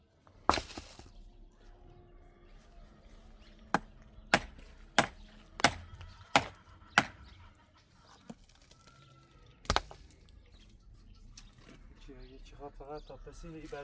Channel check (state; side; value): identical; both; correlation 1.00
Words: فقط تا پسین ای